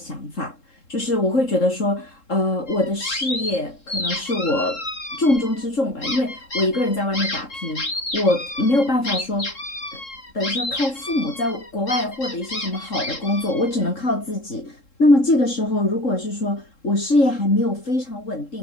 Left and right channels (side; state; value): right; late; 3.7 ms